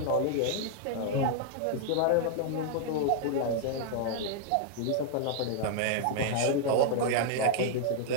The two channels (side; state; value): both; different; correlation 0.00